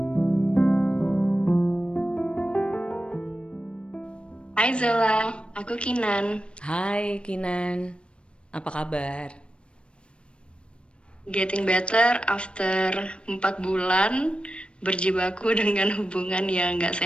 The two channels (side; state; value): right; late; 0.058 ms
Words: Hai Zela, aku Kinan. Hai Kinan, apa kabar? Getting better after 4 bulan berjibaku dengan hubungan yang nggak